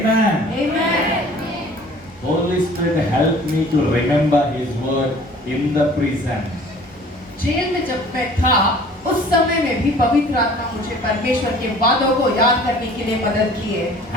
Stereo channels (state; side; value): normal; both; correlation 0.49